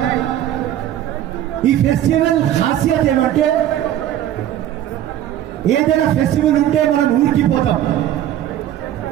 ఈ ఫెస్టివల్ ఖాసియత్ ఏమంటే ఏదైనా ఫెస్టివల్ ఉంటే మనం ఊరికి పోతాం.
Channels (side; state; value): left; quieter; 11.9 dB